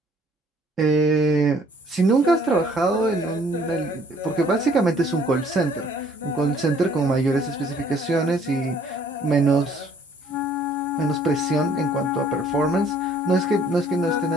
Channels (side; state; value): both; normal; correlation 0.60